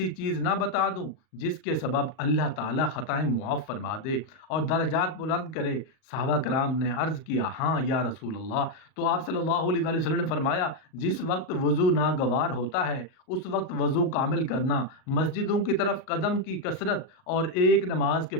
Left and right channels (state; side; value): late; right; 38 ms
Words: چیز نہ بتا دوں جس کے سبب اللہ تعالیٰ خطائیں معاف فرما دے اور درجات بلند کرے؟ صحابہ کرام نے عرض کیا، ہاں یا رسول اللہ۔ تو آپ صلی اللہ علیہ وآلہ وسلم نے فرمایا، جس وقت وضو ناگوار ہوتا ہے اس وقت وضو کامل کرنا، مسجدوں کی طرف قدم کی کثرت اور ایک نماز کے